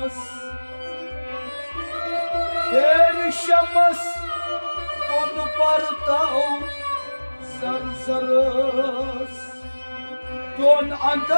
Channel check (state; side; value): inverted; both; correlation -1.00